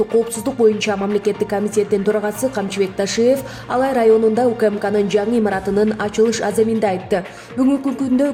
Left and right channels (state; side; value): identical; both; correlation 1.00